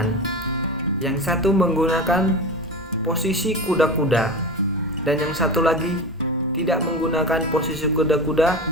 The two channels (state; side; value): normal; both; correlation 0.27